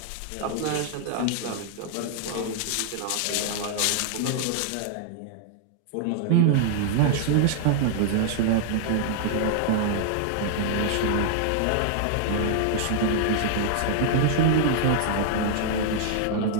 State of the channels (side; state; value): both; different; correlation -0.01